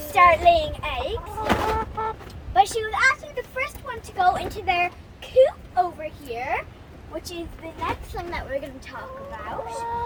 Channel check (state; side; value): identical; both; correlation 1.00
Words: start laying eggs. But she was actually the first one to go into their coop over here, which is the next thing that we're going to talk about.